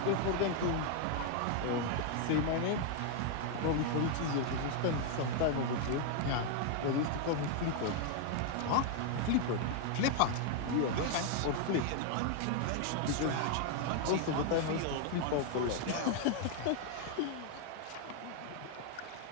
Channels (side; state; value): both; different; correlation 0.00